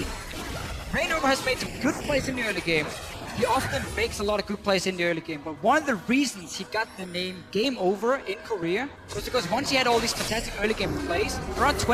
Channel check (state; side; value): identical; both; correlation 1.00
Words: Rainova has made some good plays in the early game. He often makes a lot of good plays in the early game, but one of the reasons he got the name Game Over in Korea was because once he had all these fantastic early game plays, around